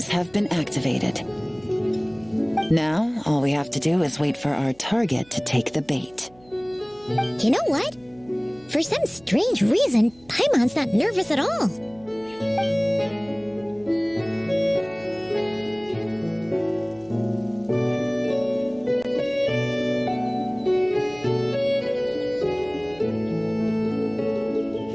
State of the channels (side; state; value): right; noise; hum, 28 dB below the sound